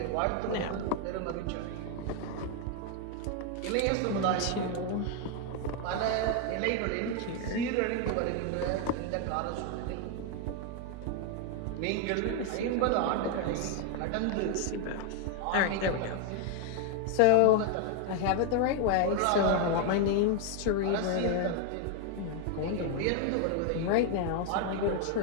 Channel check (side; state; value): both; different; correlation 0.00